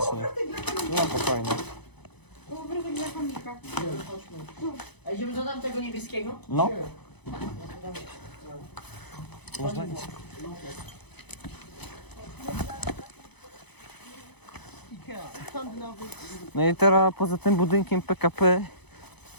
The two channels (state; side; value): late; right; 0.99 ms